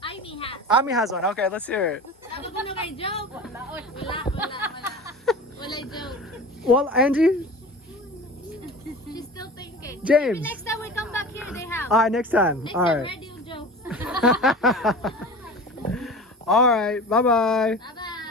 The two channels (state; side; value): normal; both; correlation 0.35